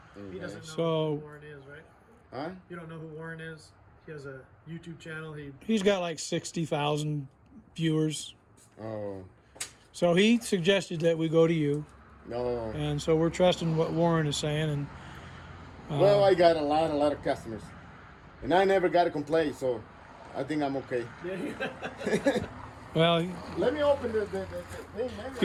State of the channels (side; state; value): both; identical; correlation 1.00